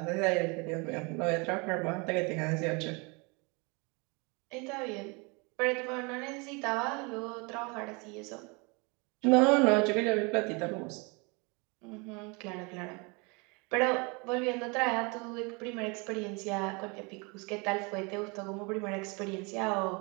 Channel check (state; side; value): quieter; left; 29.7 dB